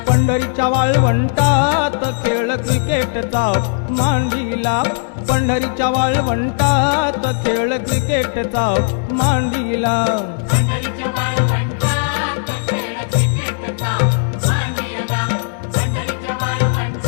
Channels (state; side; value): silent; right; digital silence